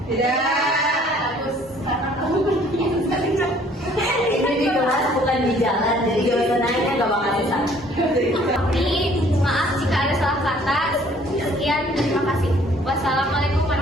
Tidak. Bagus, karena kamu bertanya. Ini di kelas bukan di jalan, jadi jawaban nanya gak bakal susah. Tapi maaf jika ada salah kata. Sekian, terima kasih. Wassalamualaikum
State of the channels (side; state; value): both; normal; correlation 0.58